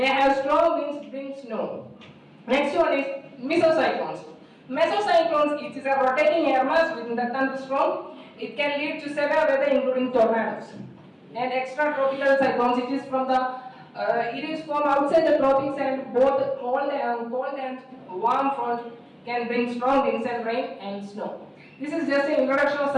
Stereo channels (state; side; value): identical; both; correlation 1.00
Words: have strong winds, bring snow. Next one is mesocyclones. Mesocyclones, it is a rotating air mass within the thunderstorm. It can lead to severe weather, including tornadoes. And extratropical cyclones, it is from outside the tropics, and both cold and warm front can bring strong winds and rain and snow. This is just an introduction of